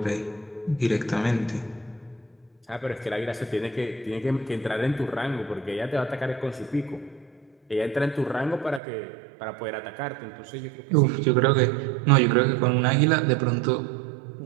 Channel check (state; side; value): drops out; left; at 8.8 s